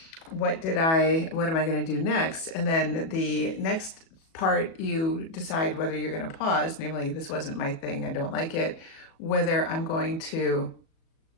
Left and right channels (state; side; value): late; right; 37 ms